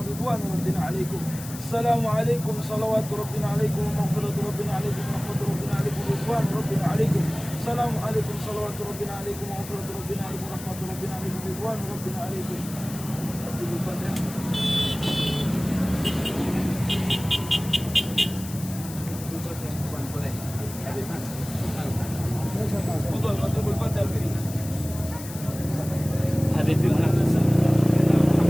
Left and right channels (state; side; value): noise; left; hiss, 13 dB below the sound